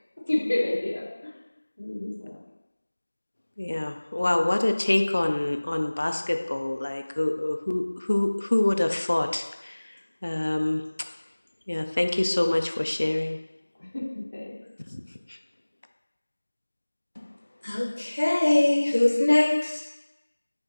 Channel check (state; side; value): inverted; both; correlation -1.00